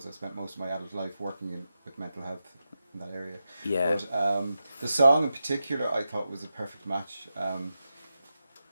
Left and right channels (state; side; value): inverted; both; correlation -0.90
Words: I spent most of my adult life working with mental health in that area. Yeah. But the song in particular, I thought was a perfect match.